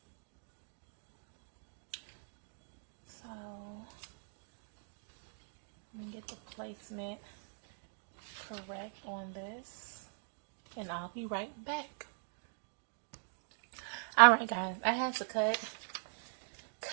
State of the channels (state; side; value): silent; left; digital silence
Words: So let me get the placement correct on this, and I'll be right back. Alright guys, I had to cut